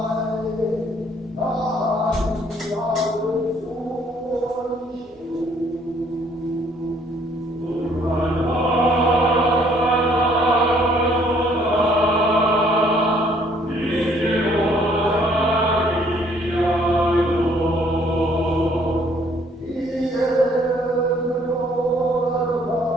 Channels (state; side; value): normal; both; correlation 0.63